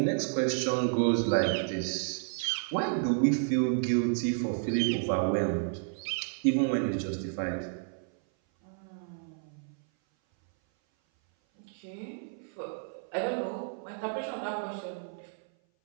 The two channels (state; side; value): silent; left; 56 dB below the other